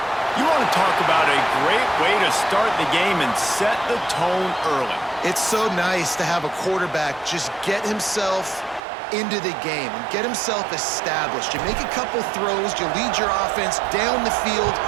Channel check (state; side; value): drops out; left; at 8.8 s